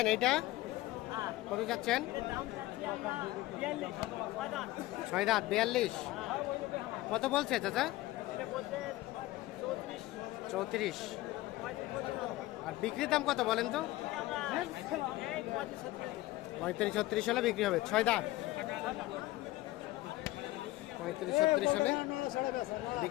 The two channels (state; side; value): quieter; right; 17.7 dB